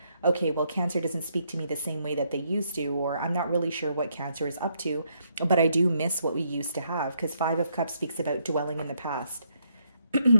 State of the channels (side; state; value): both; inverted; correlation -0.74